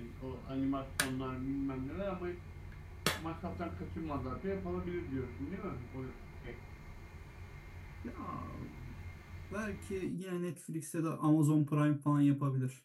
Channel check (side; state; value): both; identical; correlation 1.00